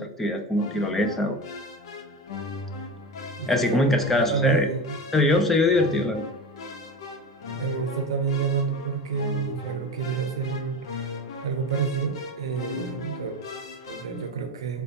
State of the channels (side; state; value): both; normal; correlation 0.27